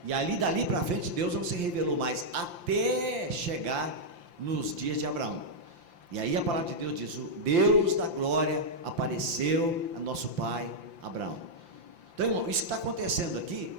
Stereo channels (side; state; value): left; late; 5.8 ms